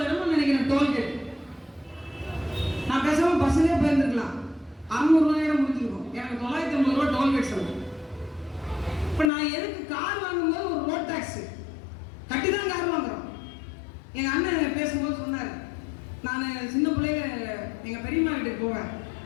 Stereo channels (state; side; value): drops out; right; at 9.3 s